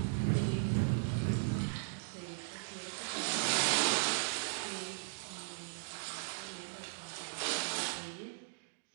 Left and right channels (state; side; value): silent; left; digital silence